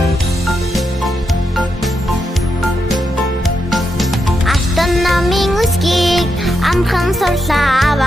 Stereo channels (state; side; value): normal; both; correlation 0.84